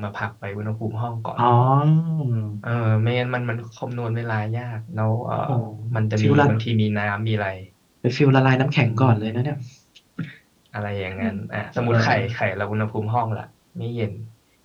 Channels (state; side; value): identical; both; correlation 1.00